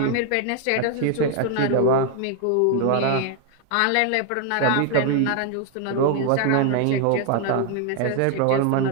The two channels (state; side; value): different; both; correlation 0.00